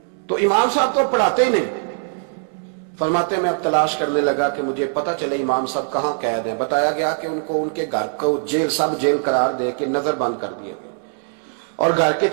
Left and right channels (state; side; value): silent; left; 65 dB below the other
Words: تو امام صاحب تو پڑھاتے ہی نہیں۔ فرماتے میں اب تلاش کرنے لگا کہ مجھے پتہ چلے امام صاحب کہاں قید ہیں، بتایا گیا کہ ان کو ان کے گھر کو جیل، سب جیل قرار دے کے نظر بند کر دیا گیا، اور گھر کے